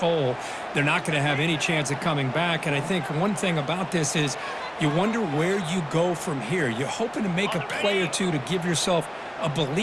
They're not going to have any chance of coming back. And I think one thing about this is you wonder where you go from here. You're hoping to make a play or two to give yourself a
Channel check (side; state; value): both; identical; correlation 1.00